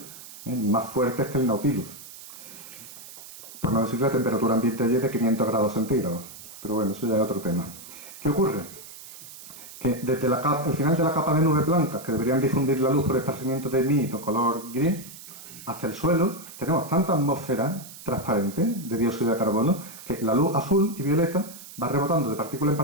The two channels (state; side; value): noise; right; hiss, 16 dB below the sound